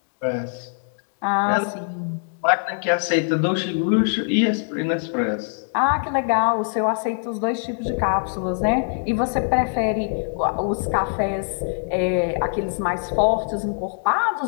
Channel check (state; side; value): silent; right; digital silence